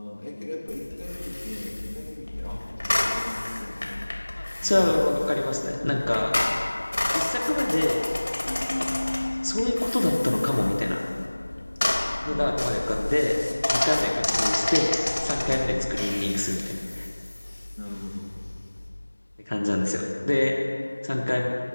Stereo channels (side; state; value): both; inverted; correlation -1.00